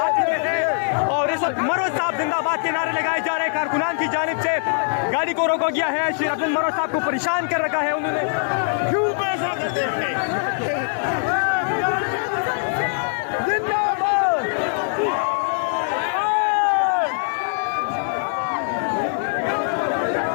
चुके हैं और इस वक्त मरोज साहब जिंदाबाद के नारे लगाए जा रहे हैं। कारकुनान की जानिब से गाड़ी को रोका गया है। शेर अब्दुल मरोज साहब को परेशान कर रखा है उन्होंने। क्यों पैसा करते हैं?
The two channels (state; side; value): silent; right; 64 dB below the other